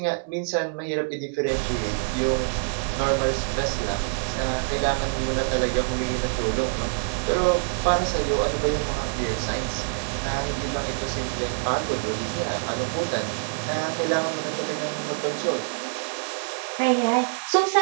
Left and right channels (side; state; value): left; silent; digital silence